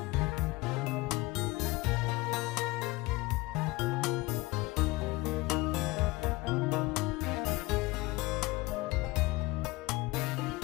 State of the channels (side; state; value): right; quieter; 21.9 dB